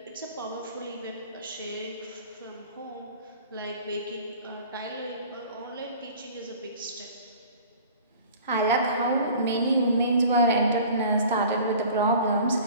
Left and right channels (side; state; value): both; inverted; correlation -0.45